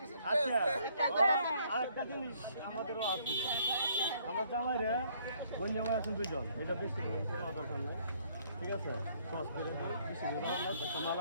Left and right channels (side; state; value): both; inverted; correlation -0.64